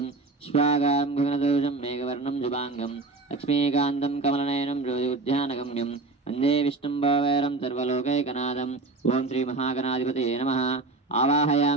శ్వాగారం గగనదోషం మేఘవర్ణం శుభాంగం లక్ష్మీకాంతం కమలనయనం జ్యోతిర్ధ్యానగమ్యం వందే విష్ణుం భవైరం సర్వలోకైకనాథం. ఓం శ్రీ మహాగణాధిపతయే నమః.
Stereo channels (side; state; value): left; quieter; 3.5 dB